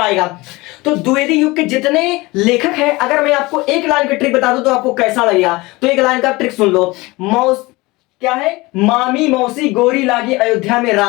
तो द्विवेदी युग के जितने लेखक हैं, अगर मैं आपको एक लाइन की ट्रिक बता दूं तो आपको कैसा लगेगा, तो एक लाइन का ट्रिक सुन लो। क्या है, मामी मौसी गोरी लागी अयोध्या में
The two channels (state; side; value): quieter; right; 22.1 dB